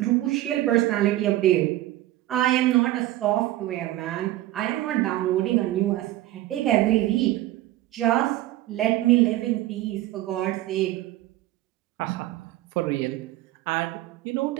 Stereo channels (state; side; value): quieter; left; 15.5 dB